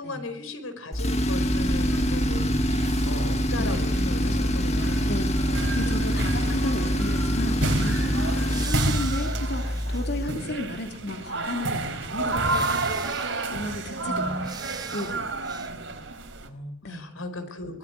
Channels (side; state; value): both; normal; correlation 0.63